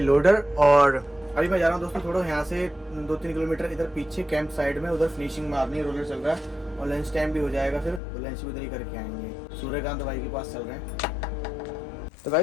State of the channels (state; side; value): drops out; right; at 8.0 s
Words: और अभी मैं जा रहा हूँ दोस्तों थोड़ा यहाँ से 2-3 किलोमीटर इधर पीछे कैंप साइड में, उधर फिनिशिंग मारनी है, रोलर चल रहा है और लंच टाइम भी हो जाएगा, फिर तो लंच भी उधर ही करके आएंगे। सूर्यकांत भाई के पास चल रहे हैं। तो